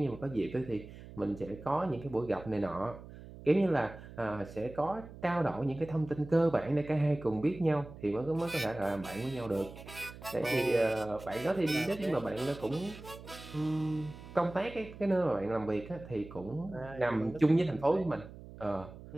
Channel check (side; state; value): right; noise; hum, 15 dB below the sound